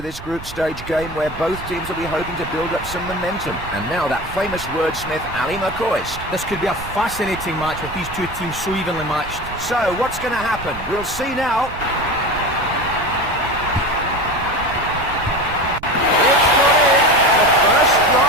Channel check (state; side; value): noise; right; rumble, 15 dB below the sound